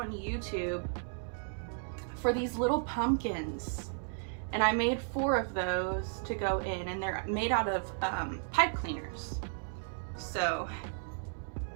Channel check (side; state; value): left; silent; 55 dB below the other